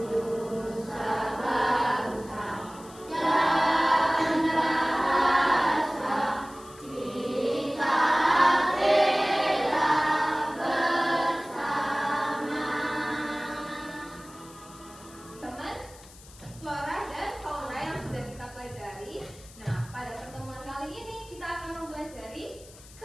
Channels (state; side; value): noise; left; hiss, 21 dB below the sound